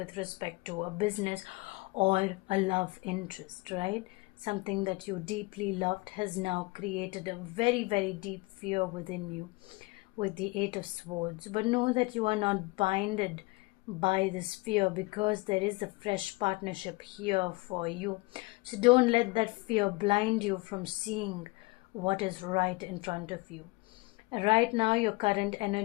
respect to a business or a love interest, right? Something that you deeply loved has now created a very, very deep fear within you with the Eight of Swords. But know that you are not binded by this fear, because there is a fresh partnership here for you. So don't let that fear blind you from seeing what is right in front of you. Right now, your current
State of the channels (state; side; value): quieter; right; 24.8 dB